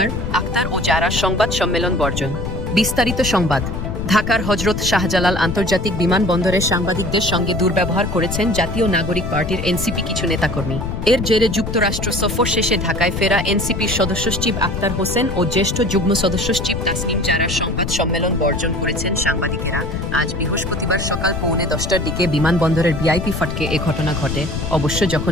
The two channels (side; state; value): left; noise; rumble, 4 dB below the sound